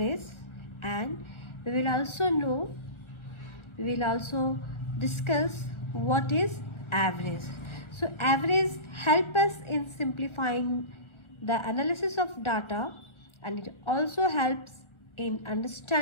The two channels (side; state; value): right; late; 1.4 ms